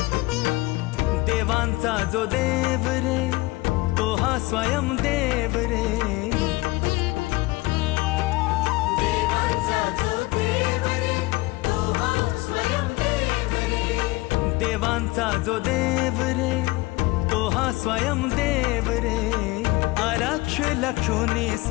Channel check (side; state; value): right; quieter; 21.1 dB